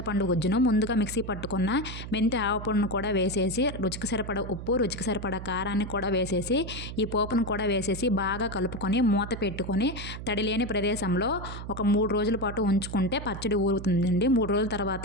గుజ్జును ముందుగా మిక్సీ పట్టుకున్న మెంతి ఆవపొడిని కూడా వేసేసి రుచికి సరిపడ ఉప్పు, రుచికి సరిపడ కారాన్ని కూడా వేసేసి ఈ పోపును కూడా వేసేసి బాగా కలుపుకొని మూత పెట్టుకొని తడిలేని ప్రదేశంలో ఒక 3 రోజుల పాటు ఉంచుకుంటే పచ్చడి ఊరుతుందండి. 3 రోజుల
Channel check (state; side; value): noise; right; hum, 9 dB below the sound